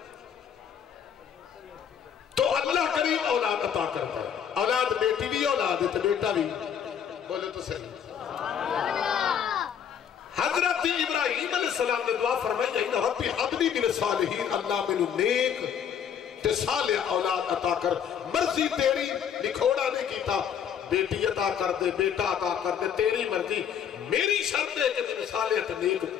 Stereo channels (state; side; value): quieter; right; 8.3 dB